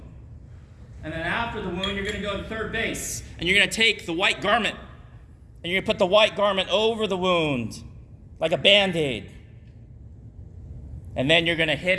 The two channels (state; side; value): identical; both; correlation 1.00